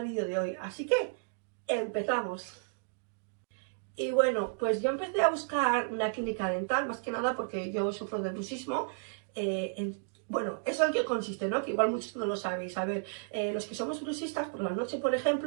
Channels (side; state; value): left; silent; digital silence